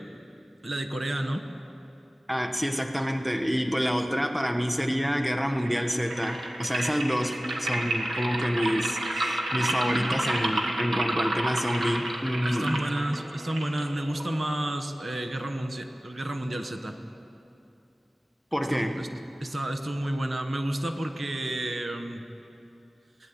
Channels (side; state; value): both; normal; correlation 0.96